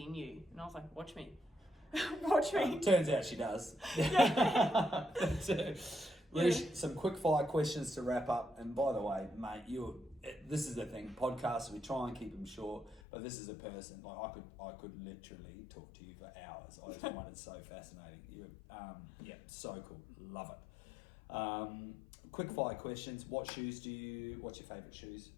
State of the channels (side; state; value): right; drops out; at 13.0 s